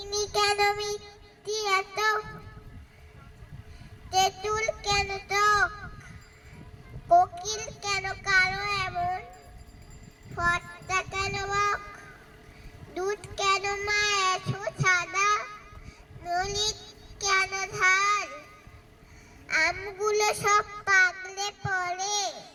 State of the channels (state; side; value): identical; both; correlation 1.00